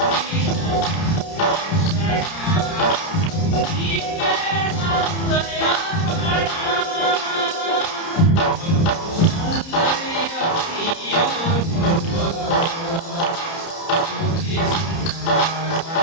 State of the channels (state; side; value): late; right; 30 ms